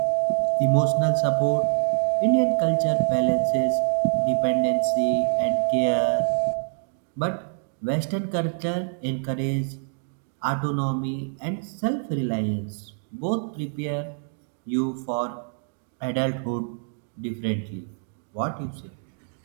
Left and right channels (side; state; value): left; silent; 61 dB below the other